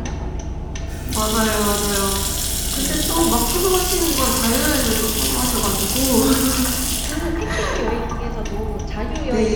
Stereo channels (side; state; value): both; identical; correlation 1.00